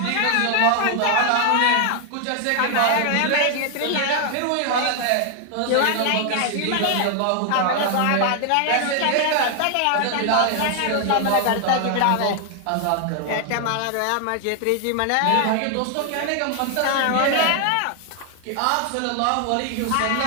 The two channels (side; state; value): both; different; correlation 0.00